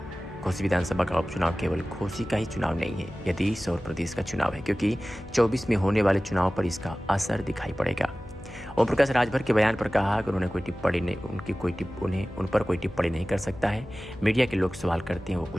घोसी विधानसभा का उपचुनाव केवल घोसी का ही चुनाव नहीं है, यह देश और प्रदेश का चुनाव है, क्योंकि 24 में होने वाले चुनाव पर इसका असर दिखाई पड़ेगा। ओम प्रकाश राजभर के बयान पर कहा कि उन्होंने कोई टिप्पणी नहीं, उन पर कोई टिप्पणी नहीं कर सकता है। मीडिया के लोग सवाल करते हैं, वो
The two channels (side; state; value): left; noise; hum, 16 dB below the sound